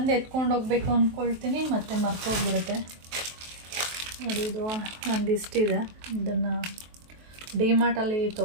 ಎತ್ಕೊಂಡು ಹೋಗ್ಬೇಕು ಅಂದ್ಕೊಳ್ತೀನಿ, ಮತ್ತು ಮರ್ತೋಗ್ಬಿಡುತ್ತೆ. ನೋಡಿ, ಇದು ಒಂದಿಷ್ಟಿದೆ. ಇದನ್ನು ಡಿಮಾರ್ಟಲ್ಲಿ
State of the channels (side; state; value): left; late; 23 ms